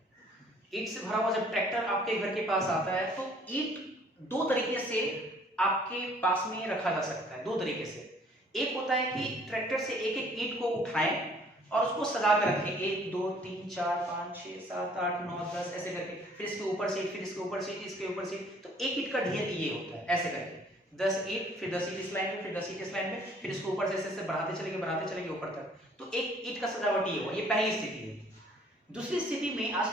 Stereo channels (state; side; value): normal; both; correlation 0.58